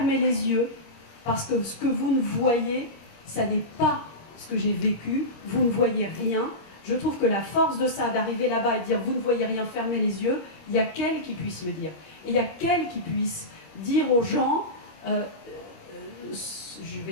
les yeux, parce que ce que vous ne voyez, ça n'est pas ce que j'ai vécu, vous ne voyez rien. Je trouve que la force de ça, d'arriver là-bas et de dire vous ne voyez rien, fermez les yeux, il n'y a qu'elle qui puisse le dire. Et il y a qu'elle qui puisse dire aux gens, je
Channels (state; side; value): late; right; 25 ms